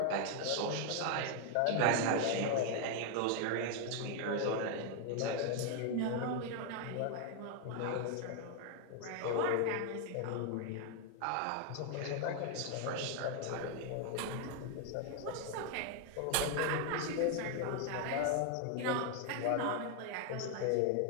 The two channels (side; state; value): both; different; correlation 0.00